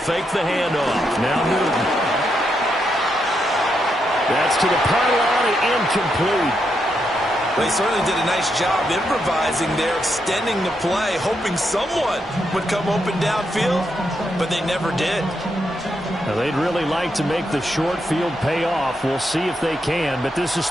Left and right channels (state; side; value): normal; both; correlation 0.81